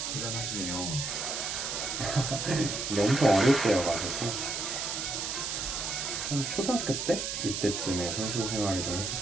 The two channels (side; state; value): right; noise; hiss, 3 dB below the sound